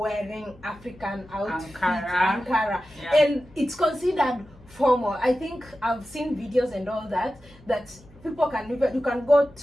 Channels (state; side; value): noise; left; hum, 24 dB below the sound